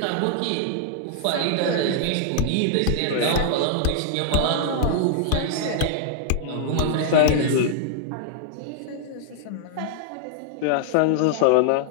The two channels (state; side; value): different; both; correlation -0.01